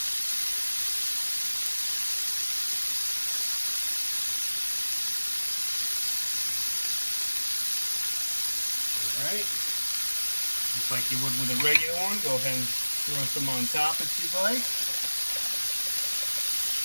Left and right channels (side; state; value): both; inverted; correlation -1.00